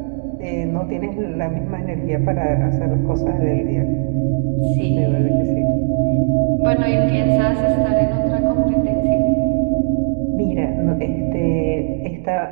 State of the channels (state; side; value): silent; left; digital silence